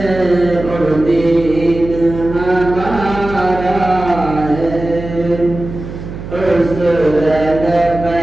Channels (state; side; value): noise; right; hum, 10 dB below the sound